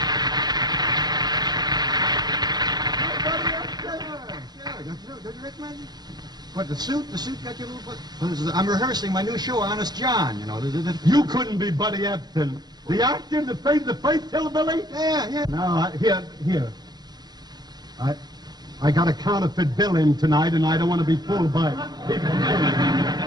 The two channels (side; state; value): left; late; 0.20 ms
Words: Don't you recognize me? What, the suit? The suit got you a little... Well, I'm rehearsing my new show, Honest John, you know. You couldn't be Buddy Epson. The actor, the face hillbilly? Yeah. No, here. I got a counterfeit bill in tonight, and I don't want to be fooled by people.